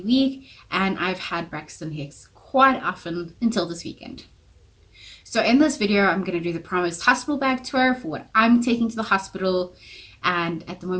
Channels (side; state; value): both; identical; correlation 1.00